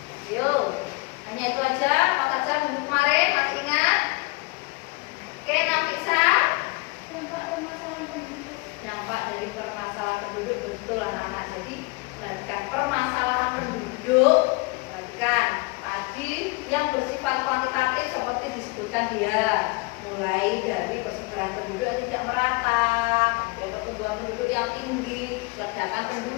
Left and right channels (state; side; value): quieter; right; 25.6 dB